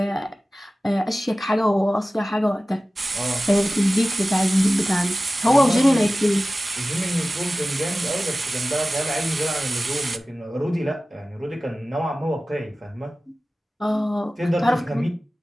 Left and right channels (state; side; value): normal; both; correlation 0.96